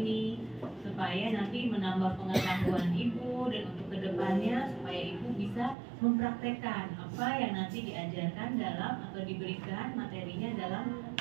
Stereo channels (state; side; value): drops out; left; at 5.8 s